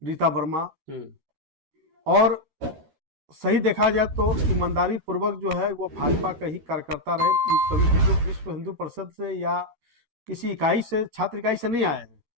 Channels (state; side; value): late; left; 13 ms